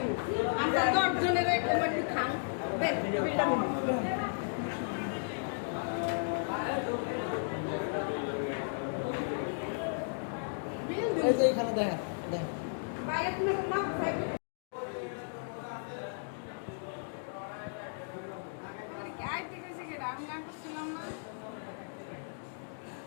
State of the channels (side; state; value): right; silent; digital silence